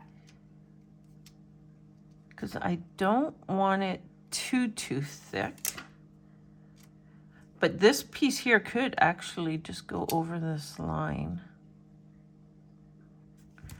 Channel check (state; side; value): identical; both; correlation 1.00